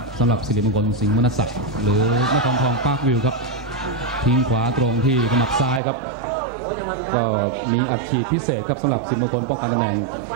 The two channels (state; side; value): drops out; left; at 5.8 s